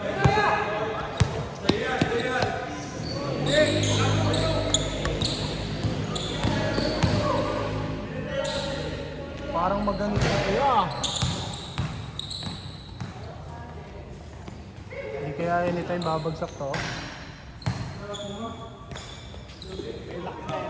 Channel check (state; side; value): identical; both; correlation 1.00